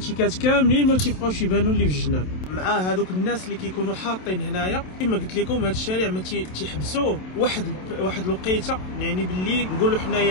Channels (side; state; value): right; late; 27 ms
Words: كاملين ما تيبقاوش يبانوا اللي في الجناب، مع هذوك الناس اللي كيكونوا حاطين هنايا. كما قلت لكم هذا الشارع ما تيحبسوه واحد الوقيته، يعني بالليل نقولوا